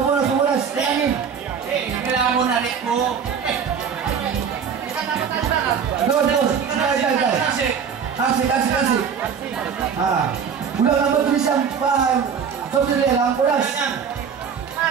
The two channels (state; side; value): quieter; left; 6.9 dB